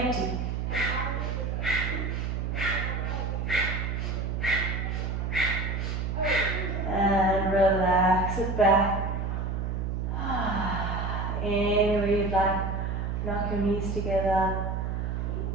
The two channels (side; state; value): right; noise; hum, 1 dB below the sound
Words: 'Relax it back. Anywhere you'd like, knock your knees together.